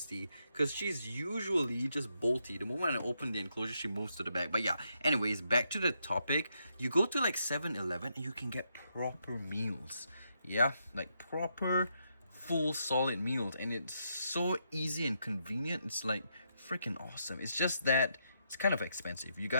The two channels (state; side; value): inverted; both; correlation -0.79